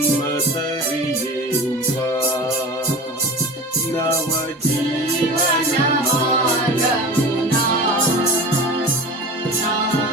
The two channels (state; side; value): normal; both; correlation 0.35